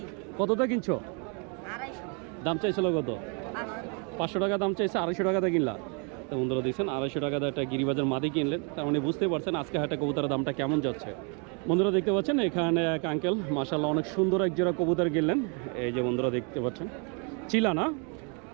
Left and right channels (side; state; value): left; quieter; 36.3 dB